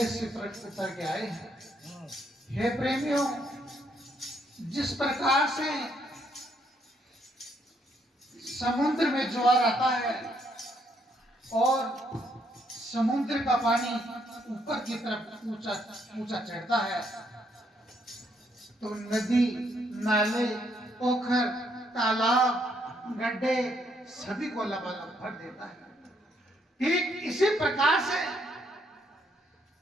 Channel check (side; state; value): both; normal; correlation 0.72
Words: से प्रकट करके आए हैं। हे प्रेमियों, जिस प्रकार से समुद्र में ज्वार आता है और समुद्र का पानी ऊपर की तरफ ऊंचा चढ़ता है, तो नदी, नाले, पोखर, तालाब, गड्ढे सभी को लबालब भर देता है। ठीक इसी प्रकार से